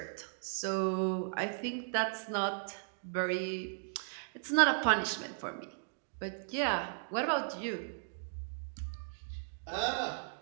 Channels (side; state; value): left; silent; digital silence